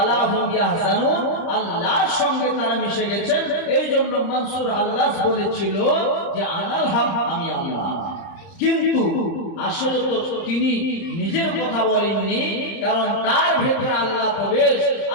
হুম ইয়াহজানুন, আল্লাহর সঙ্গে তারা মিশে গেছেন। এই জন্য মনসুর আল্লাহ বলেছিল যে আনাল হক, আমি আল্লাহ। কিন্তু আসলে তো তিনি নিজের কথা বলেননি, কারণ তার ভিতরে আল্লাহ প্রবেশ,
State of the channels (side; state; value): right; late; 30 ms